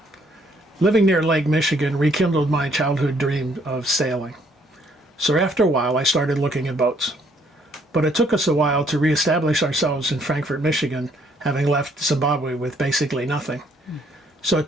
Living near Lake Michigan rekindled my childhood dream of sailing. So after a while, I started looking at boats. But it took us a while to reestablish ourselves in Frankfort, Michigan, having left Zimbabwe with basically nothing. So it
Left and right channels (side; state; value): both; normal; correlation 0.67